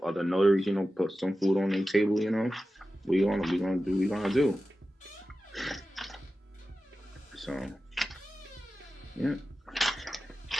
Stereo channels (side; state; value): both; normal; correlation 0.94